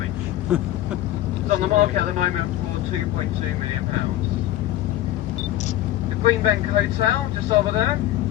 It's on the market at the moment for £2.2 million. The Greenbank Hotel, just over there.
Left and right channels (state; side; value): quieter; right; 13.9 dB